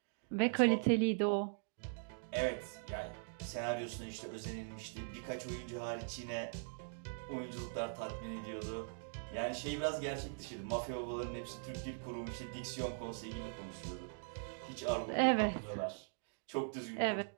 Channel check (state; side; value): silent; left; digital silence